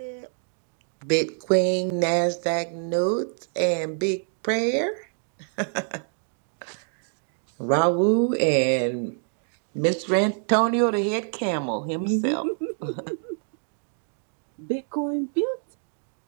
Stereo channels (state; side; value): silent; left; 60 dB below the other